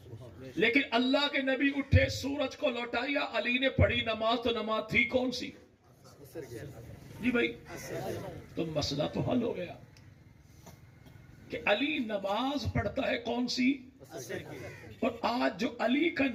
لیکن اللہ کے نبی اٹھے، سورج کو لوٹایا، علی نے پڑھی نماز، تو نماز تھی کون سی؟ جی بھائی تو مسئلہ تو حل ہو گیا کہ علی نماز پڑھتا ہے کون سی؟ اور آج جو علی کا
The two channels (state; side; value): identical; both; correlation 1.00